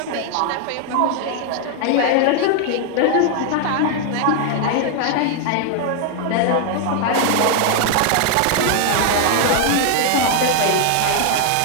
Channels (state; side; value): different; both; correlation 0.00